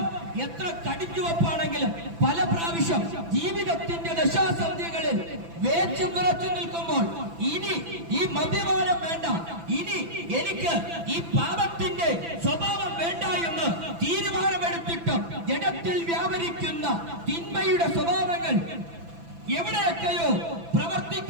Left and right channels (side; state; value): left; late; 6.0 ms